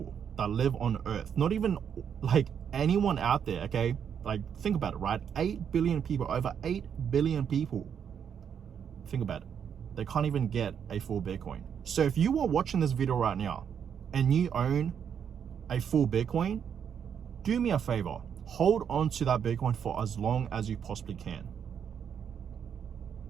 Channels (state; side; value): quieter; left; 7.9 dB